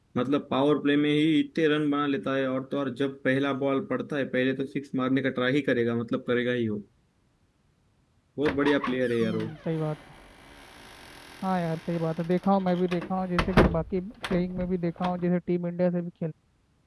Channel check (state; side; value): identical; both; correlation 1.00